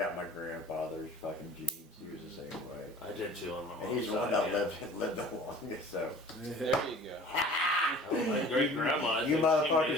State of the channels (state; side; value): normal; both; correlation 0.46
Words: grandfather's fucking genes. He was the same way. I did too on my mom's And he's the one side, that yeah. lived the longest. So There you go. Oh, my great grandma. you